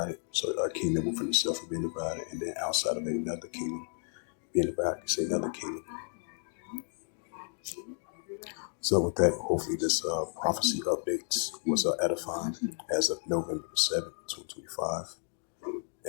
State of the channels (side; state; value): right; silent; 56 dB below the other